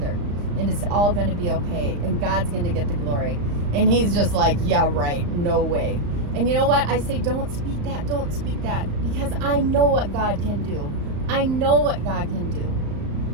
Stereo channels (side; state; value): left; late; 35 ms